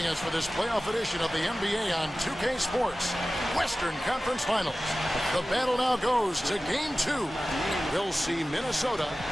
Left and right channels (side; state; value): both; normal; correlation 0.96